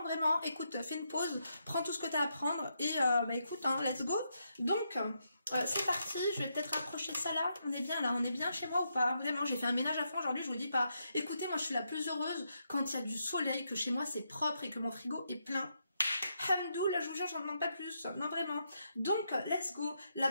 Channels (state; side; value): inverted; both; correlation -0.81